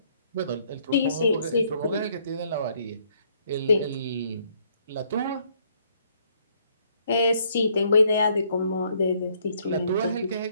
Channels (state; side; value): inverted; both; correlation -0.67